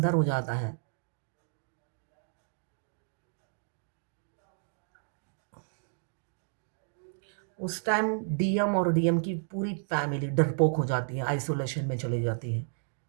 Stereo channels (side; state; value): left; silent; digital silence